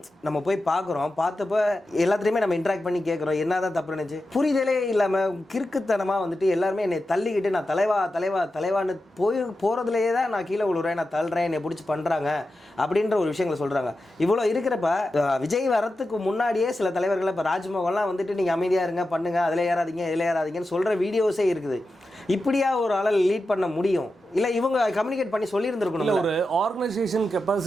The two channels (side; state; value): both; normal; correlation 0.91